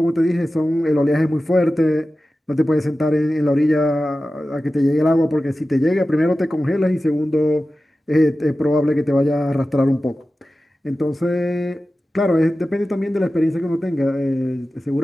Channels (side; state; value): both; normal; correlation 0.94